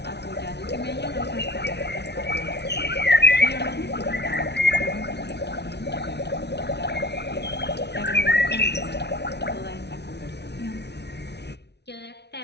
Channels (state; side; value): late; right; 0.50 ms